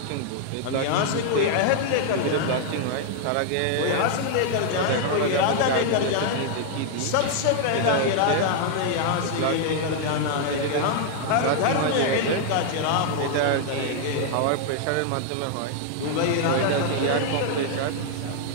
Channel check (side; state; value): both; different; correlation 0.00